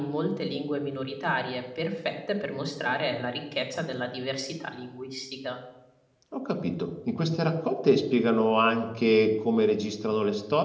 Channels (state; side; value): identical; both; correlation 1.00